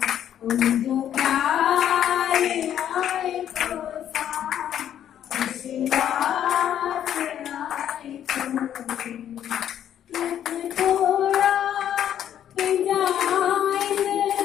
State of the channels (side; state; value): right; quieter; 10.3 dB